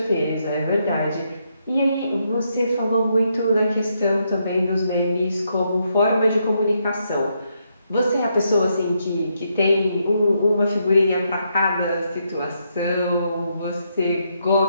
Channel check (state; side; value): inverted; both; correlation -0.78